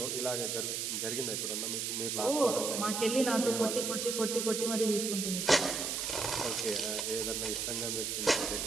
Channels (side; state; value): right; noise; hiss, 1 dB below the sound